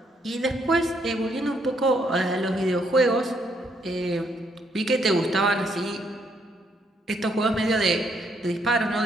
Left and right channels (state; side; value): normal; both; correlation 0.72